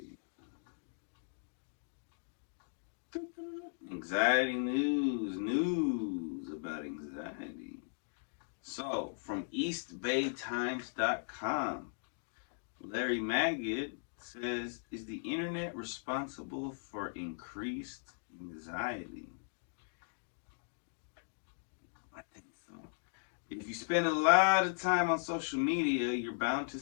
Anxiety news about anxiety. So, from EastBayTimes.com, Larry Magid says, is the internet responsible for increased anxiety? I think so. If you spend a lot of time on social media, you're bound to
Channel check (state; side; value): silent; right; digital silence